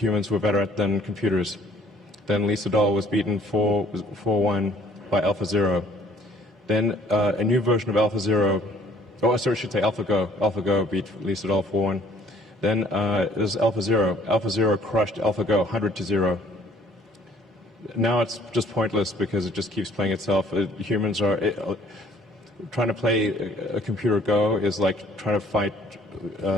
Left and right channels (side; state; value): both; normal; correlation 0.59